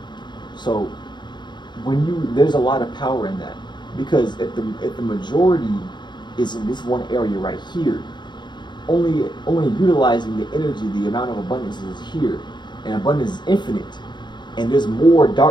So there's a lot of power in that, because if the majority is in this one area right here, only utilizing the energy, the amount of abundance is here, and abundance is infinite, and there's more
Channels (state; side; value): late; right; 0.22 ms